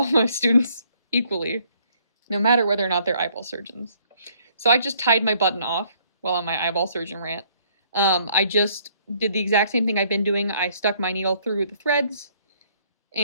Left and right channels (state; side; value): inverted; both; correlation -0.64